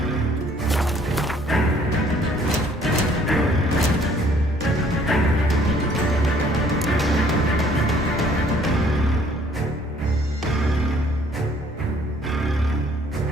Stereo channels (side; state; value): both; normal; correlation 0.60